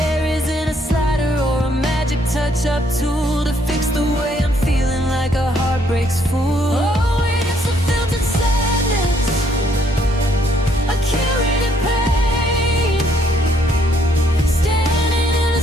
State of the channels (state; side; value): normal; both; correlation 0.69